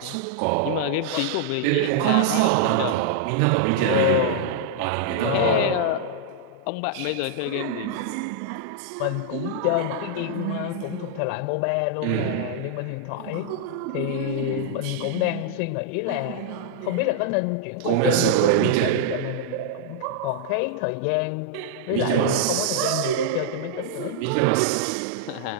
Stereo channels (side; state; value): both; different; correlation -0.01